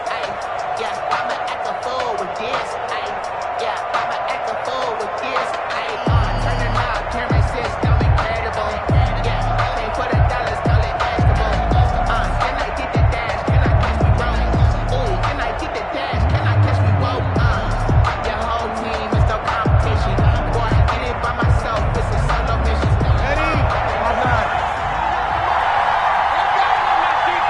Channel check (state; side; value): identical; both; correlation 1.00